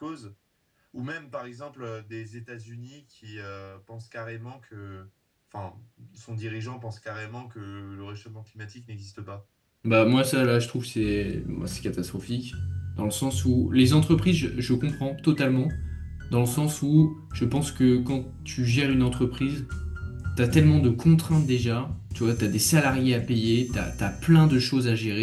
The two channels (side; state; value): both; identical; correlation 1.00